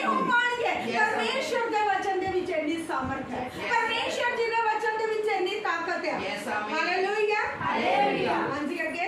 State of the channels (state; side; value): identical; both; correlation 1.00